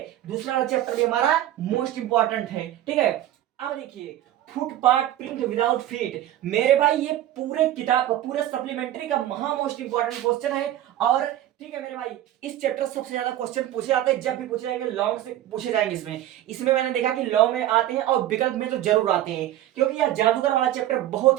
दूसरा वाला चैप्टर भी हमारा मोस्ट इंपॉर्टेंट है। ठीक है, अब देखिए फुटपाथ प्रिंट विदाउट फीट, मेरे भाई ये पूरे किताब का, पूरे सप्लीमेंट्री का महा मोस्ट इंपॉर्टेंट क्वेश्चन है। और ठीक है मेरे भाई, इस चैप्टर से सबसे ज्यादा क्वेश्चन पूछे जाते हैं, जब भी पूछे जाएंगे लॉ से पूछे जाएंगे। इसमें मैंने देखा कि लॉ में आते हैं और विकल्प में तो जरूर आते हैं, क्योंकि यह जादूगर वाला चैप्टर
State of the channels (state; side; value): quieter; left; 13.1 dB